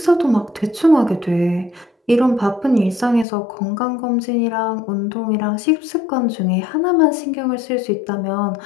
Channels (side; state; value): right; drops out; at 3.2 s